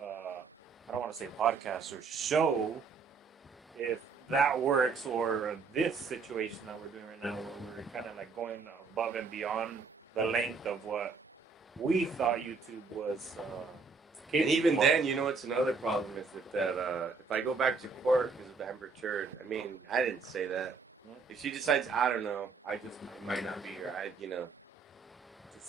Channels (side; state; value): left; quieter; 4.7 dB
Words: don't want to say podcast or show. If that works, or this situation that we're doing right now, where we're kind of like going above and beyond the length of what we thought YouTube was. And even then, you know what's another problem is that if I go back to court because of Amber Turd, I mean, I didn't say that. If she decides, I don't know, I might not be here.